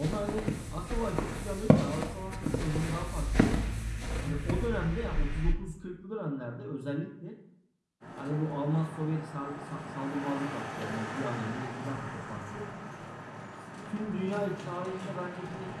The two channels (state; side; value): identical; both; correlation 1.00